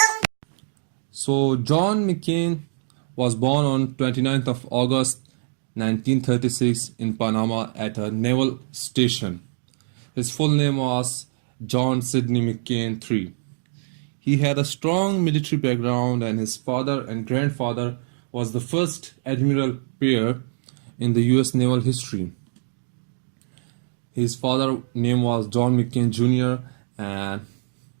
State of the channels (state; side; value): silent; left; digital silence